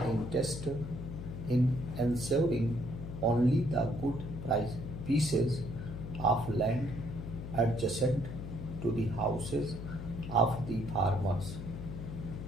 interest in ensuring only the good price pieces of land adjacent to the houses of the farmers.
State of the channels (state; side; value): noise; left; hum, 8 dB below the sound